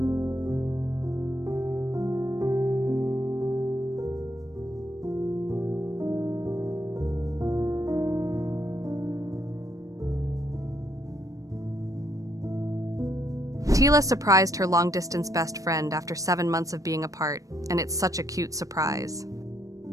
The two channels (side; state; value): left; late; 0.16 ms